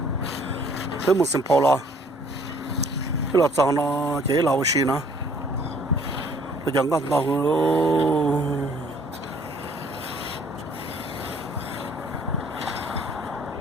都没生跑了，这老脏了，这老些呢，这讲个闹喽。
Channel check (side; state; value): both; normal; correlation 0.59